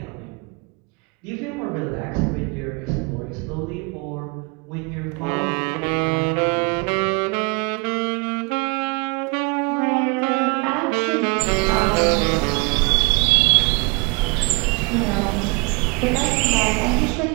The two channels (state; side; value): quieter; left; 28.9 dB